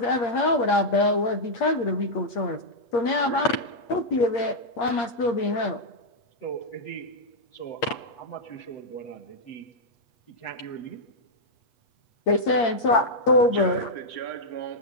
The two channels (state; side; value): late; right; 8.6 ms